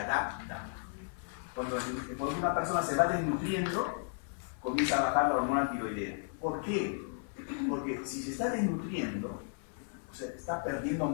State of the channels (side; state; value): right; silent; 55 dB below the other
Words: Cuando una persona se va desnutriendo, comienza a bajar la hormona tiroidea. ¿Por qué? Porque si se está desnutriendo, o sea, está perdiendo